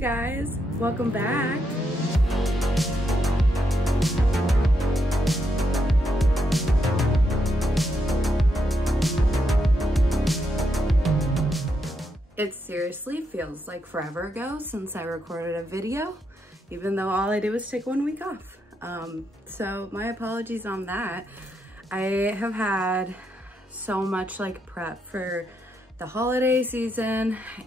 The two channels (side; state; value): both; normal; correlation 0.81